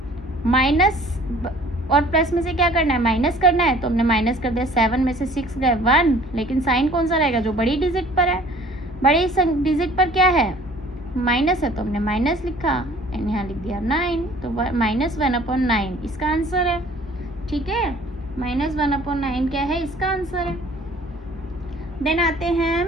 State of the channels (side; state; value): both; normal; correlation 0.52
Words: माइनस, और प्लस में से क्या करना है, माइनस करना है, तो हमने माइनस कर दिया। 7 में से 6 गए 1, लेकिन साइन कौन सा रहेगा, जो बड़ी डिजिट पर है, बड़ी डिजिट पर क्या है, माइनस है, तो हमने माइनस लिखा एंड यहाँ लिख दिया 9, तो -1/9 इसका आंसर है, ठीक है। -1/9 क्या है, इसका आंसर है। देन आते हैं हम